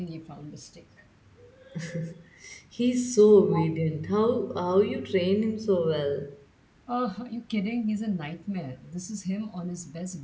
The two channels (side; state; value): both; identical; correlation 1.00